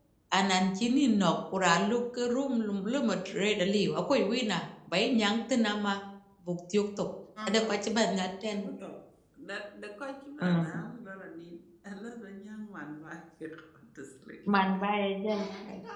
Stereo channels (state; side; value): identical; both; correlation 1.00